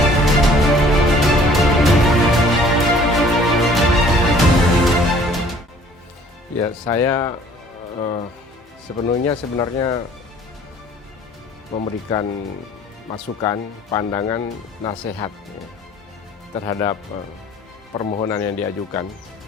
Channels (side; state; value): both; normal; correlation 0.54